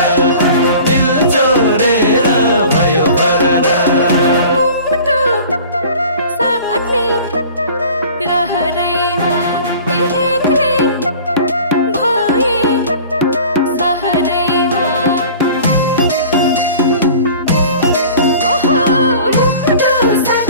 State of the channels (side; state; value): both; inverted; correlation -0.44